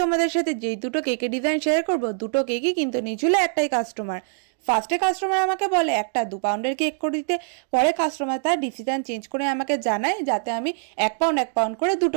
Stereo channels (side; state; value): left; silent; digital silence